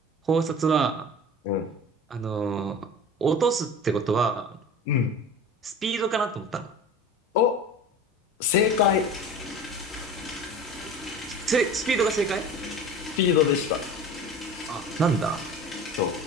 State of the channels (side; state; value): both; normal; correlation 0.36